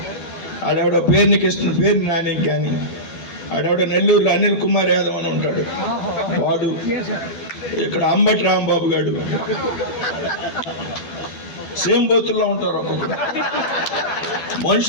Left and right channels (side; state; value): right; late; 12 ms